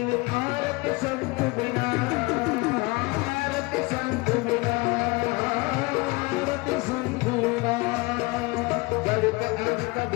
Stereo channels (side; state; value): right; quieter; 25.0 dB